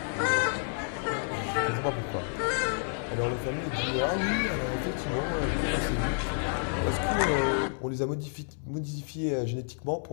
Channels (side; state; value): right; silent; digital silence